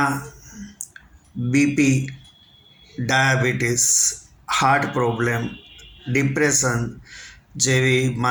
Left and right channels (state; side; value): identical; both; correlation 1.00